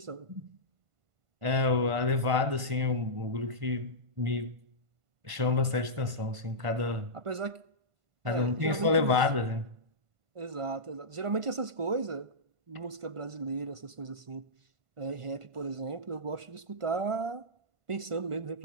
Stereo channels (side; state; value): left; late; 1.5 ms